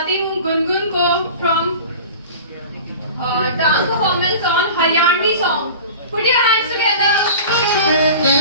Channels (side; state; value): both; inverted; correlation -0.37